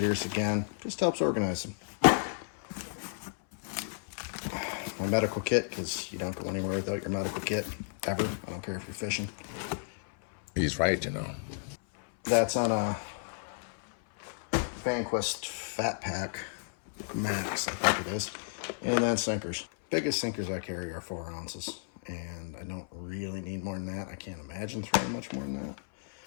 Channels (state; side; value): silent; right; 56 dB below the other